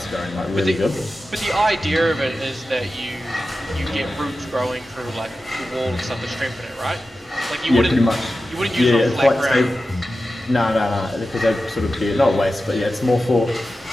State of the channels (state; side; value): normal; both; correlation 0.93